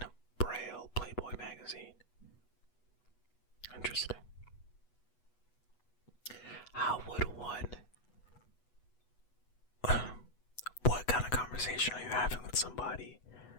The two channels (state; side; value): late; right; 8.1 ms